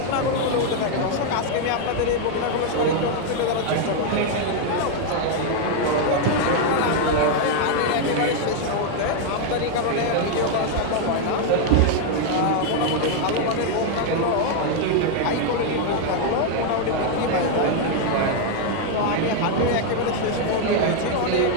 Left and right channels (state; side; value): different; both; correlation 0.00